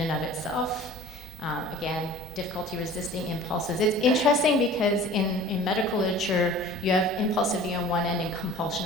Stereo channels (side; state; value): both; normal; correlation 0.45